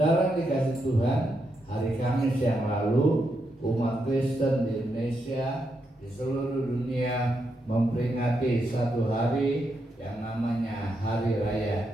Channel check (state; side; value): normal; both; correlation 0.82